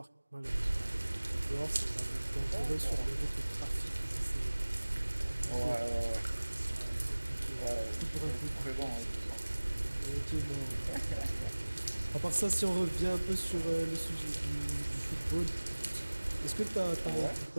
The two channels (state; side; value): inverted; both; correlation -1.00